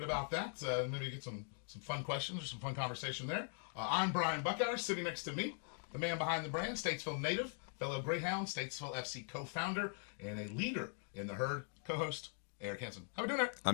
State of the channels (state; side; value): silent; right; 50 dB below the other